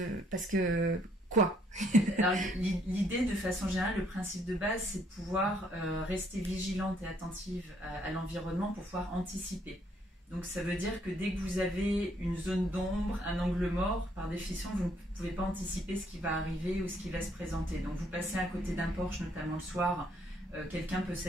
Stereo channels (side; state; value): both; normal; correlation 0.68